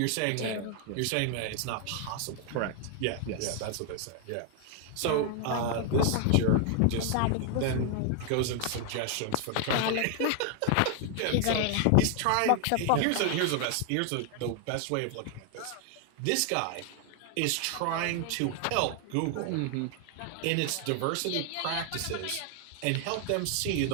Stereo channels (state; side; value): different; both; correlation 0.00